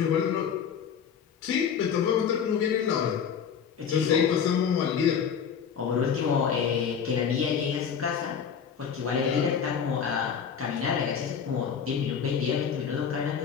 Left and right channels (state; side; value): quieter; right; 7.3 dB